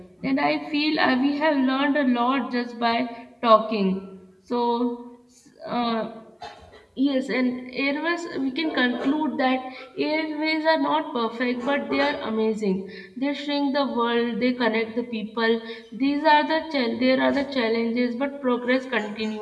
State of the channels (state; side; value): identical; both; correlation 1.00